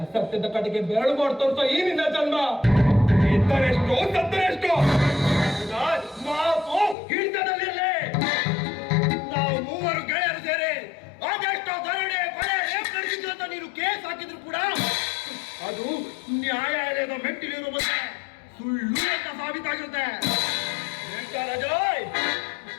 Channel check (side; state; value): right; drops out; at 7.0 s